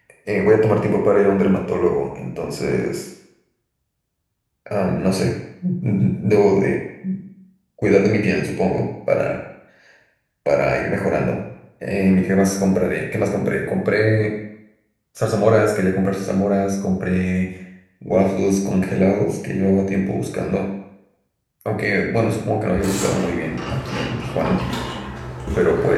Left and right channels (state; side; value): identical; both; correlation 1.00